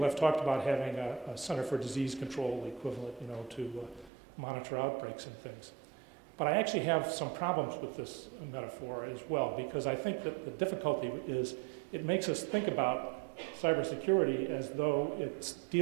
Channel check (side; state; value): left; drops out; at 4.1 s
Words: have talked about having a Center for Disease Control equivalent, to monitor outbreaks and things. But I actually have some problems with this metaphor as well, because I think that the difficulty is it makes us think about cybersecurity as though it's